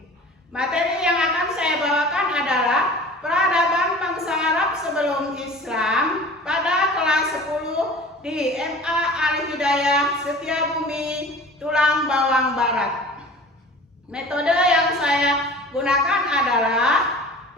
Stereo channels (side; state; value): both; normal; correlation 0.42